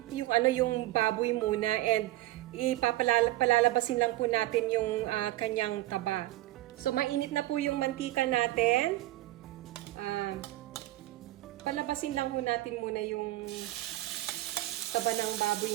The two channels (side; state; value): left; quieter; 16.7 dB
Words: baboy muna and ipapalalabasin lang po natin yung kanyang taba. So mainit na po yung mantika natin. Palabasin lang po natin muna yung taba ng